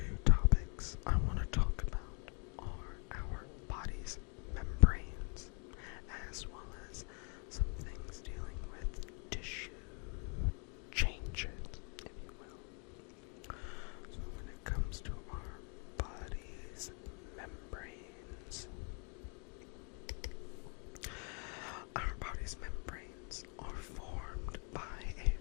topics I want to talk about are our body's membranes, as well as some things dealing with tissue changes, if you will. So when it comes to our body's membranes, our body's membranes are formed by a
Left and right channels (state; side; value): quieter; right; 37.3 dB